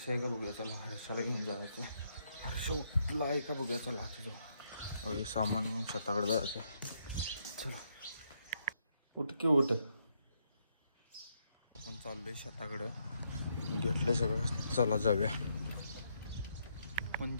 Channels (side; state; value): both; inverted; correlation -0.76